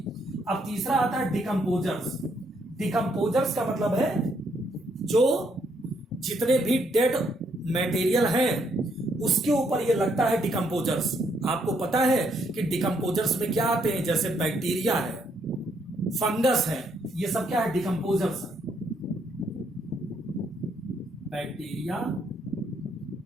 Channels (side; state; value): both; normal; correlation 0.73